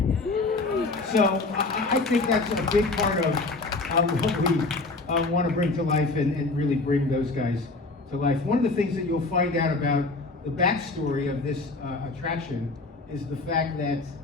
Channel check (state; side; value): quieter; right; 3.4 dB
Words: So I think that's a big part of what we want to bring to life and really bring those guys to life. One of the things that you'll find out about the backstory of this attraction is the fact that